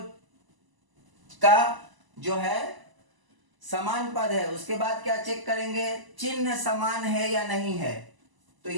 का जो है समान पद है, उसके बाद क्या चेक करेंगे, चिन्ह समान है या नहीं है। तो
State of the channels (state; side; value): late; left; 1.0 ms